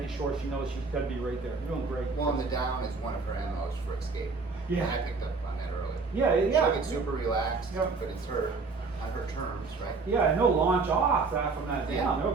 sure she knows she's got to be right there. You're doing great. Well, and the down is one of her MOs for escape. Yeah. And I picked up on that earlier. Yeah. She'll get super relaxed, but it's her, on her terms, right? Yeah, and they'll launch off from that down.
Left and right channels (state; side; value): quieter; left; 4.2 dB